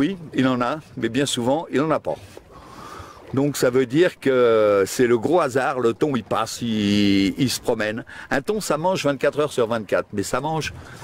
il en a, mais bien souvent, il n'en a pas. Donc ça veut dire que c'est le gros hasard, le thon il passe, il se promène. Un thon ça mange 24 heures sur 24, mais ça mange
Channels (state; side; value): identical; both; correlation 1.00